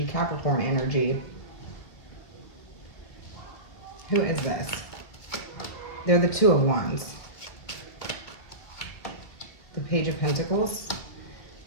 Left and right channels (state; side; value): late; right; 2.2 ms